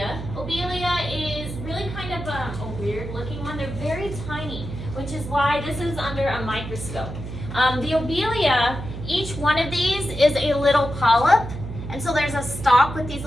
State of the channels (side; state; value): right; noise; hum, 8 dB below the sound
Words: Obelia is really kind of a weird looking one. They're very tiny, which is why this is under a microscope. The obelia, each one of these is a little polyp. And so there's a stalk with these